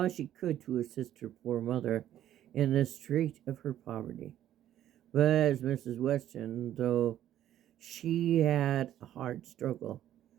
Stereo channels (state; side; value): quieter; left; 11.9 dB